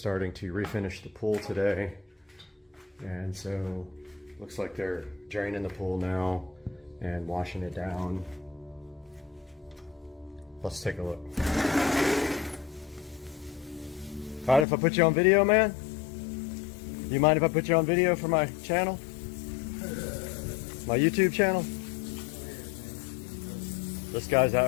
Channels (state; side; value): drops out; right; at 14.7 s